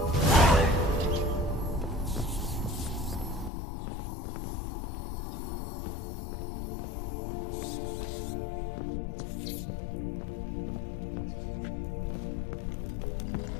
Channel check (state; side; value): drops out; right; at 3.5 s